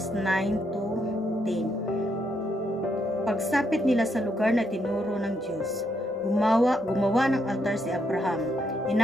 9 to 10. Pagsapit nila sa lugar na tinuro ng Diyos, gumawa ng altar si Abraham.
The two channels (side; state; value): both; normal; correlation 0.77